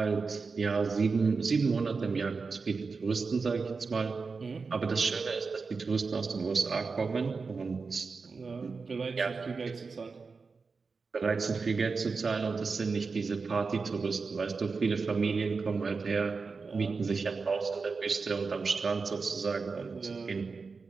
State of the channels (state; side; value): quieter; left; 4.6 dB